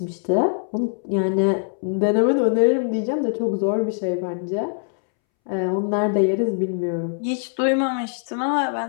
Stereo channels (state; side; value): silent; right; 64 dB below the other